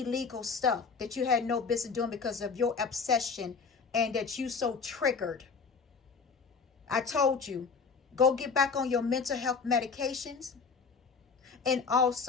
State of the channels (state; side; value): quieter; right; 5.1 dB